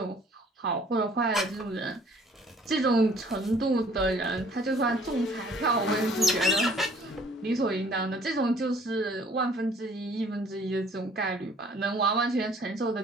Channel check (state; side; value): normal; both; correlation 0.56